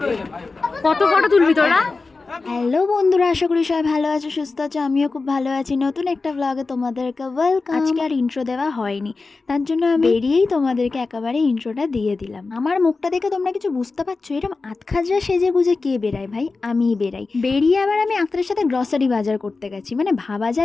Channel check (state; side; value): quieter; right; 3.9 dB